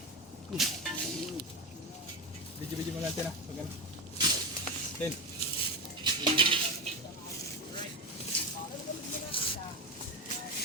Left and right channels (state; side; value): normal; both; correlation 0.16